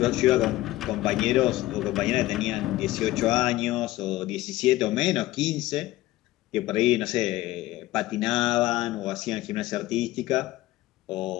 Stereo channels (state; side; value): quieter; right; 16.9 dB